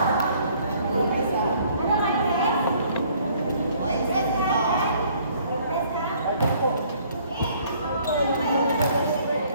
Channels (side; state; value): both; inverted; correlation -0.60